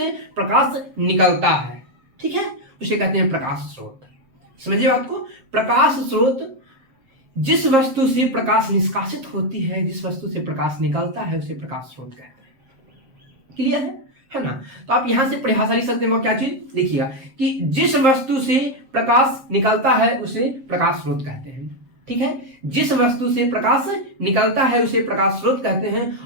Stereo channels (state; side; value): late; left; 7.5 ms